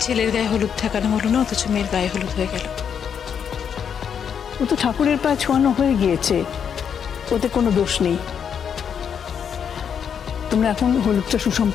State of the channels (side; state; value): right; quieter; 7.7 dB